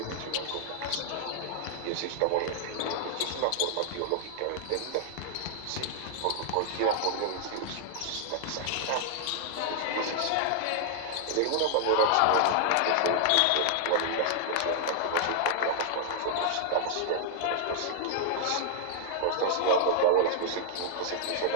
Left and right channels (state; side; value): different; both; correlation -0.01